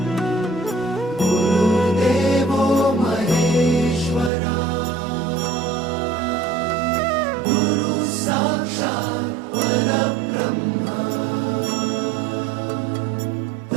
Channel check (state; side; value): drops out; left; at 4.3 s